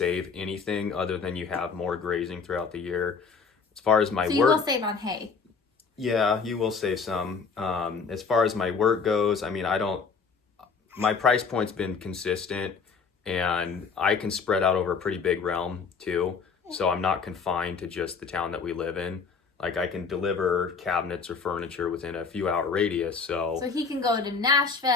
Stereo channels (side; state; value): right; quieter; 5.3 dB